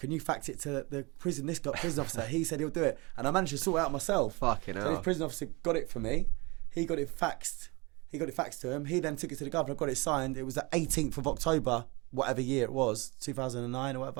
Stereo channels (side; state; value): left; quieter; 26.4 dB